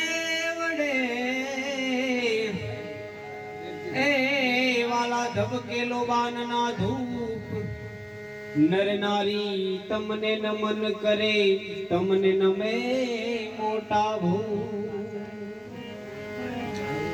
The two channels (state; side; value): identical; both; correlation 1.00